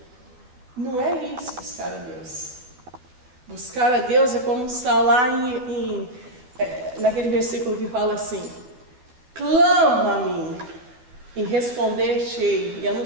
Não é isso, buscar a Deus. Buscar a Deus é como está lá naquele versículo que fala assim: clama a mim e responder-te-ei e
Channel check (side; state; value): left; late; 12 ms